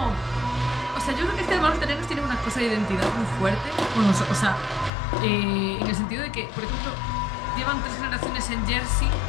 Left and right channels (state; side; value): drops out; right; at 4.9 s